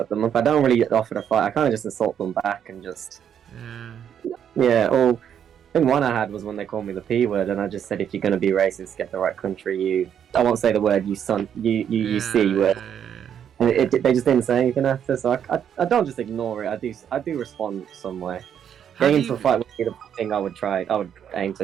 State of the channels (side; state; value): left; quieter; 8.8 dB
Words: them up. I don't really offer to fight, I kind of just insult them back and just... Yeah, or... I think one I had was when they called me the P word, and I just said, if you're going to be racist, get the right country, you... I won't say the word, you son, you C word. And they just didn't say anything after, so I don't just ignore it, I do respond some way. Getting into a fight would be the thing I would aim to